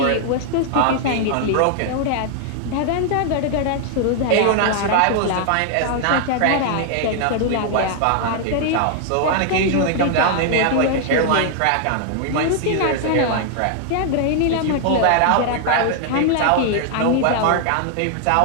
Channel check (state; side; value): different; both; correlation 0.00